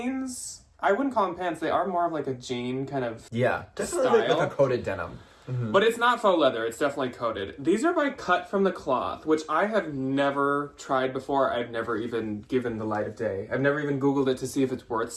I wouldn't call them pants. They are more of like a jean kind of definitely style. like a coated denim. Mm-hmm. But it's not faux leather. It's definitely coated. These are by Cut from the Cloth, which I have never tried before. I've never even given the light of day. I've never even Googled it to see if it's worth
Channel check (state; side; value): identical; both; correlation 1.00